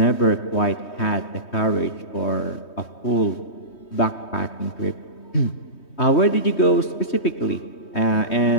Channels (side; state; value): right; late; 3.2 ms